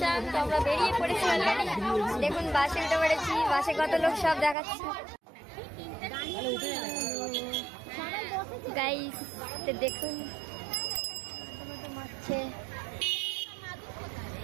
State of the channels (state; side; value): drops out; left; at 4.5 s